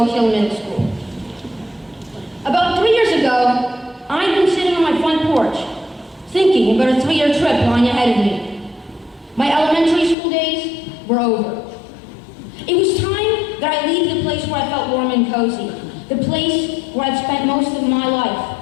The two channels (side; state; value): right; drops out; at 10.2 s